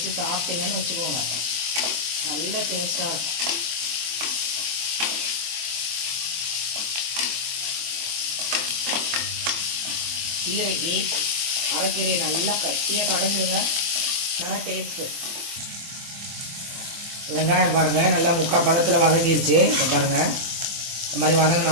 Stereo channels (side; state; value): left; late; 24 ms